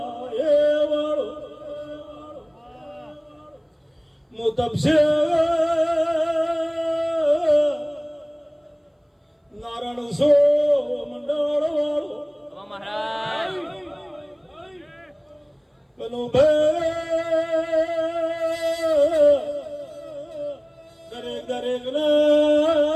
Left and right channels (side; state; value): both; identical; correlation 1.00